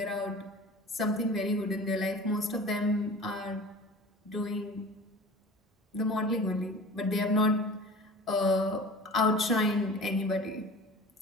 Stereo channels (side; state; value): both; normal; correlation 0.39